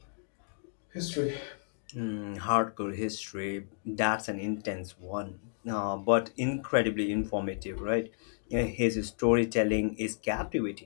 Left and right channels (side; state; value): right; silent; digital silence